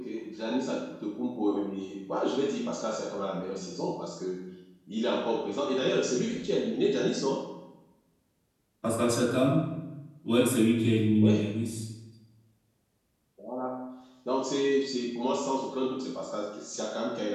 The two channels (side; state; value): both; identical; correlation 1.00